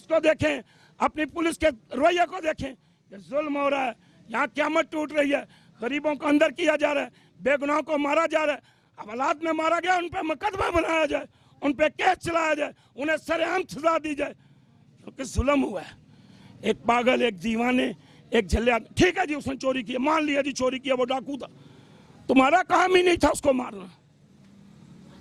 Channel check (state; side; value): identical; both; correlation 1.00